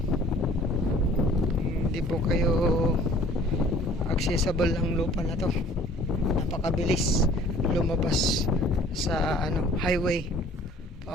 Hindi po kayo accessible ang lupa na to. Napakabilis lumabas sa ano highway.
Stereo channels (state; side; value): normal; both; correlation 0.52